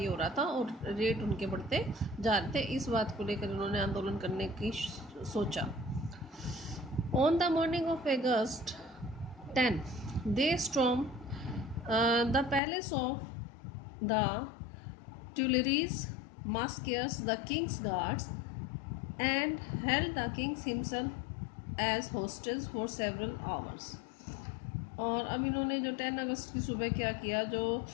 हो रहा था और रेट उनके बढ़ते जा रहे थे। इस बात को लेकर उन्होंने आंदोलन करने की सोचा। On the morning of August 10 they storm the palace of the Tuileries, massacres the king's guards and held the king himself as hostage for several hours। और अब इन्होंने जो 10 अगस्त की सुबह क्या किया, जो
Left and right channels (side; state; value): right; drops out; at 12.6 s